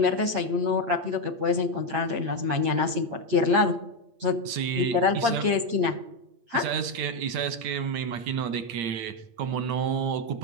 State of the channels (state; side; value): late; left; 8.7 ms